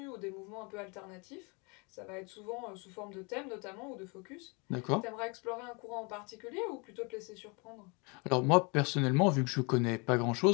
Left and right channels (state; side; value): quieter; right; 31.0 dB